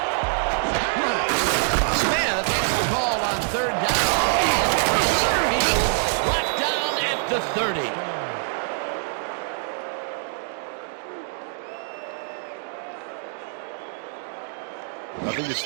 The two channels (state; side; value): silent; left; 62 dB below the other